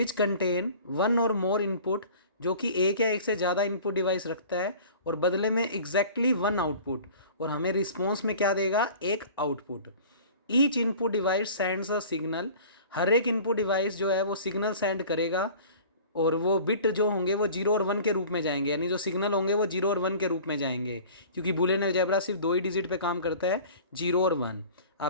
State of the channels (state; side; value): inverted; both; correlation -0.43